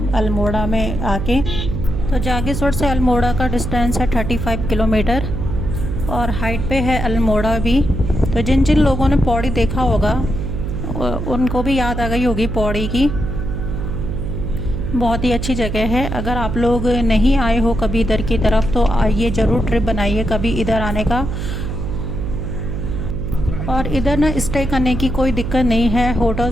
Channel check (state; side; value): noise; right; hum, 4 dB below the sound